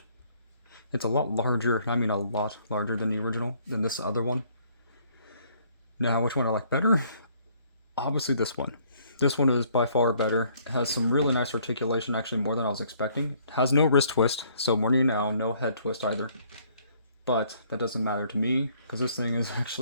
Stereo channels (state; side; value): inverted; both; correlation -0.63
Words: It's a lot larger, I mean a lot larger than the original, than this other one. Now, which one I like better? Obviously this one. This one is by far better. It has some really nice articulation, actually more than I was expecting. It has no wrist twist, so warning you now, no head twist either. But that doesn't matter to me, because this thing is